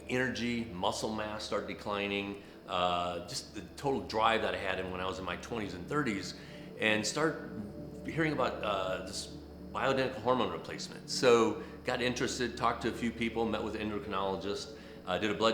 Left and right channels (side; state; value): both; identical; correlation 1.00